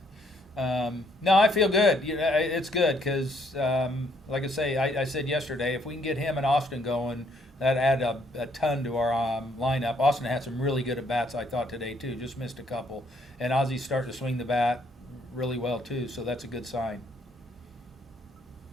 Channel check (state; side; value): normal; both; correlation 0.68